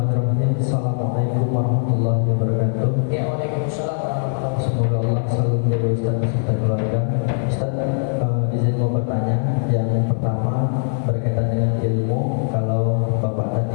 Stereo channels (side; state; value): right; silent; 65 dB below the other